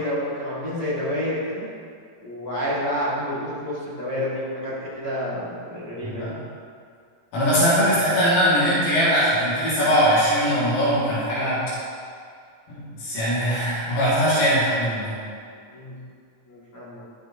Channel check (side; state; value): right; late; 18 ms